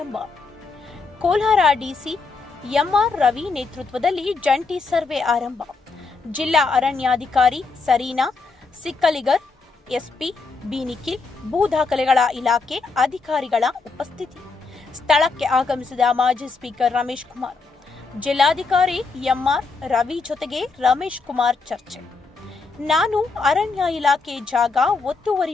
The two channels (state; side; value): quieter; right; 4.3 dB